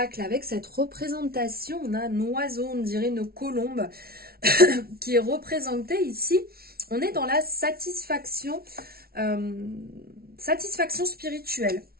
avec cette représentation, on a un oiseau, on dirait une colombe, qui est représentée ici. On est dans la satisfaction spirituelle,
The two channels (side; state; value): left; late; 0.44 ms